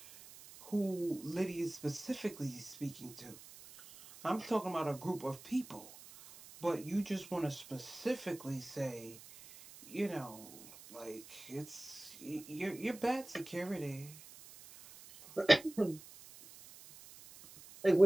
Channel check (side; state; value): right; noise; hiss, 18 dB below the sound